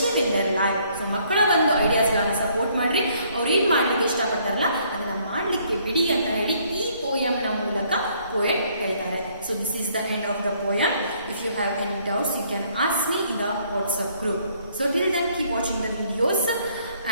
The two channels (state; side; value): inverted; both; correlation -0.65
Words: in their life. So ಮಕ್ಕಳ ಒಂದು ideas ಗಳನ್ನ support ಮಾಡ್ರಿ, ಅವ್ರು ಏನ್ ಮಾಡ್ಲಿಕ್ಕೆ ಇಷ್ಟಪಡ್ತಾರಲ್ಲ ಅದನ್ನ ಮಾಡ್ಲಿಕ್ಕೆ ಬಿಡಿ ಅಂತ ಹೇಳಿ ಈ poem ನ ಮೂಲಕ poet ಹೇಳ್ತಾರೆ. So this is the end of the poem. If you have any doubts, you can ask me in the WhatsApp group. So till then, keep watching the videos